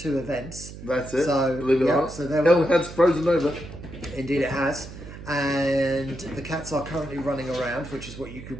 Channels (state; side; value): noise; right; hum, 13 dB below the sound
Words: events. That's it. So believe it or not. So Hell has frozen over. Indeed, it has. And the cats are currently running around, which is what you